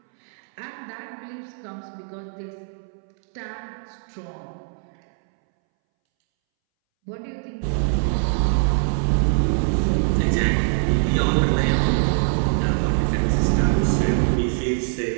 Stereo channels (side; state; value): left; silent; 63 dB below the other